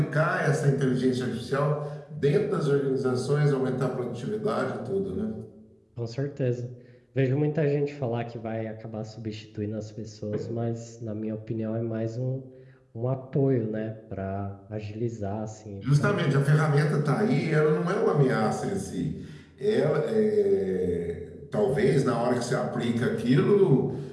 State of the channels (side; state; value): both; identical; correlation 1.00